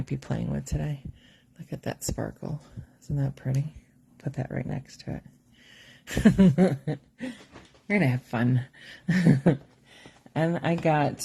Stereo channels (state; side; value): identical; both; correlation 1.00